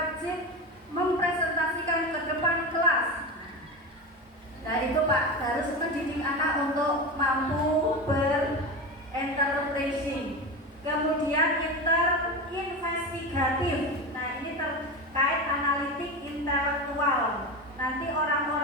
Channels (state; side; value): normal; both; correlation 0.23